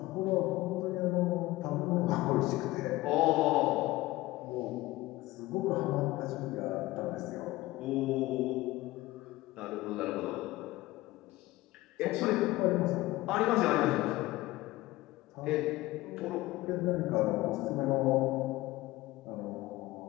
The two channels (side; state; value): right; quieter; 18.5 dB